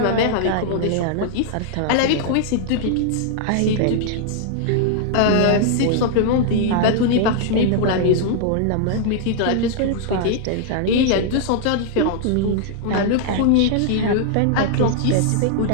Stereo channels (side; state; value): both; different; correlation -0.01